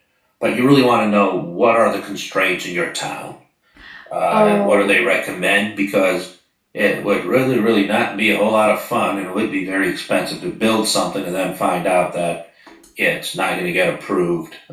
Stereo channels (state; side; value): identical; both; correlation 1.00